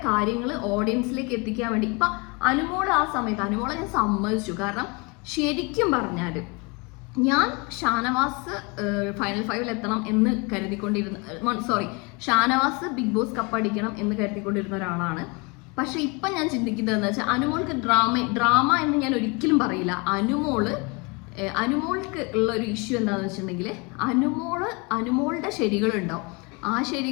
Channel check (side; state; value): right; quieter; 29.4 dB